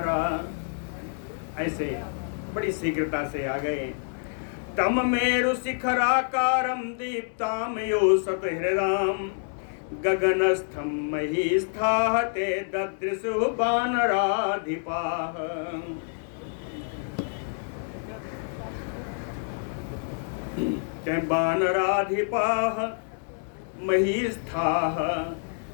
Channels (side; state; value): right; silent; 60 dB below the other